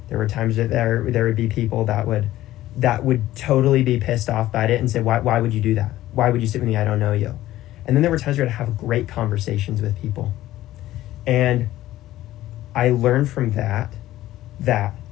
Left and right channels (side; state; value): right; quieter; 14.9 dB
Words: There were times that there would be people that would totally be pissed off by it and say, why would you do that? Why would you sit with me? I don't know you. And then there were times where I'd have great conversations with people. And I learned from that